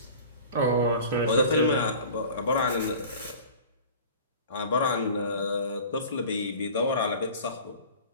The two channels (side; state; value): both; inverted; correlation -0.41